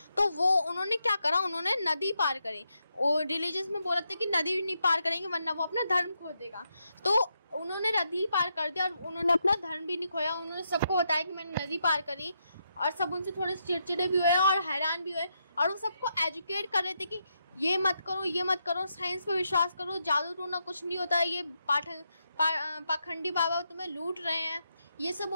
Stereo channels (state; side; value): inverted; both; correlation -0.82